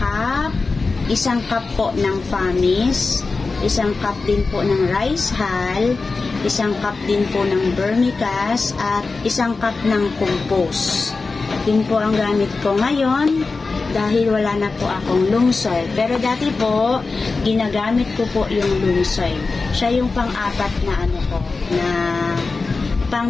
Isang cup po ng Famis. Isang cup din po ng rice hull. Isang cup din po ng vermicast. At isang cup ng compost. Yun po ang gamit ko ngayon dahil wala na po akong loam soil. Pero dati po, ginagamit ko po yung loam soil. Siya yung pang-apat na na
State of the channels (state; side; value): quieter; right; 4.0 dB